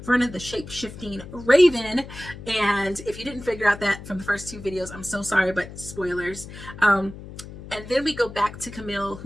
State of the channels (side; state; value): left; noise; hum, 14 dB below the sound